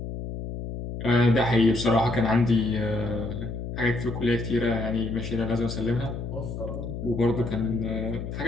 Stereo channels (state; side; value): noise; left; hum, 7 dB below the sound